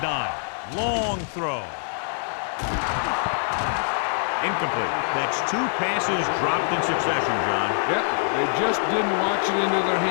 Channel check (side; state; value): right; silent; 62 dB below the other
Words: Long throw. Incomplete. That's 2 passes dropped in succession, John. Yep, they just didn't watch it into their